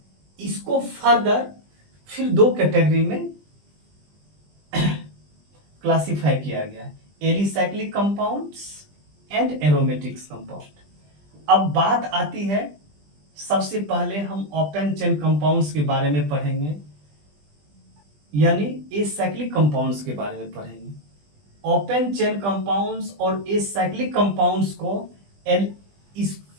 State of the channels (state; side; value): late; left; 20 ms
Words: इसको फर्दर फिर दो कैटेगरी में क्लासिफाई किया गया है, alicyclic compounds and aromatics compound. अब बात आती है, सबसे पहले हम ओपन चेन कंपाउंड्स के बारे में पढ़ेंगे, यानी एसाइक्लिक कंपाउंड्स के बारे में पढ़ेंगे। ओपन चेन कंपाउंड्स और एसाइक्लिक कंपाउंड्स को